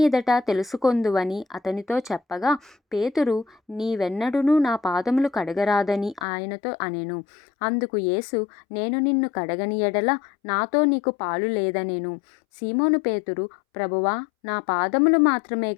తెలుసుకొందువని అతనితో చెప్పగా, పేతురు, నీవెన్నడునూ నా పాదములు కడగరాదని ఆయనతో అనెను. అందుకు యేసు, నేను నిన్ను కడగని ఎడల నాతో నీకు పాలు లేదనెను. సీమోను పేతురు, ప్రభువా, నా పాదములు మాత్రమే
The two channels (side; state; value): right; drops out; at 6.2 s